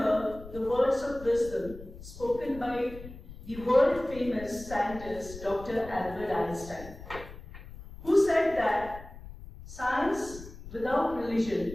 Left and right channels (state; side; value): noise; left; rumble, 15 dB below the sound